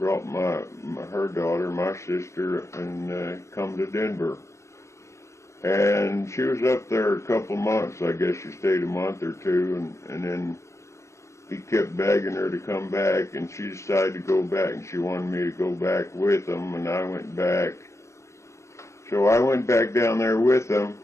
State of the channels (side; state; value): right; late; 0.14 ms